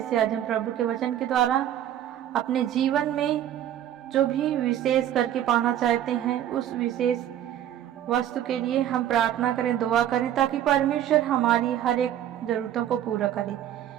आज हम प्रभु के वचन के द्वारा अपने जीवन में जो भी विशेष करके पाना चाहते हैं उस विशेष वस्तु के लिए हम प्रार्थना करें, दुआ करें, ताकि परमेश्वर हमारी हर एक जरूरतों को पूरा करे।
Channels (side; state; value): left; quieter; 11.3 dB